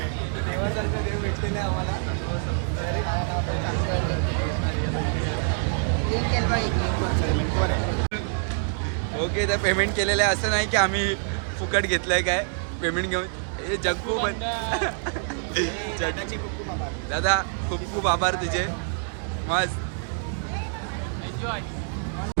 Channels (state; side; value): silent; left; 61 dB below the other